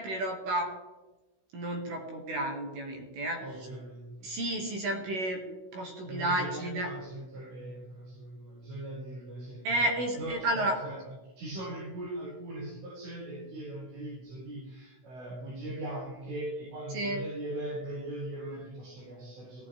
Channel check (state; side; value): late; left; 16 ms